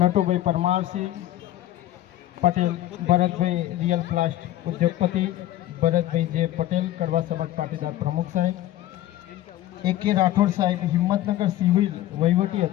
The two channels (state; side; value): quieter; right; 13.9 dB